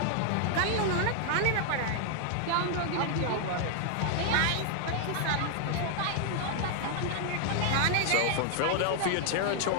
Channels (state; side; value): different; both; correlation 0.00